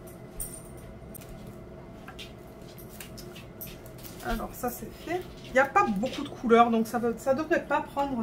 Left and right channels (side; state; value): both; identical; correlation 1.00